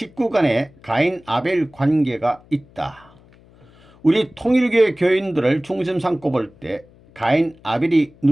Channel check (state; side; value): noise; left; hum, 27 dB below the sound